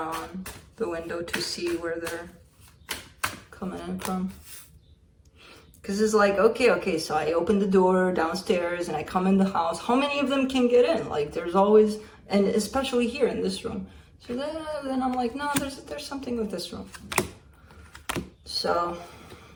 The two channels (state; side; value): identical; both; correlation 1.00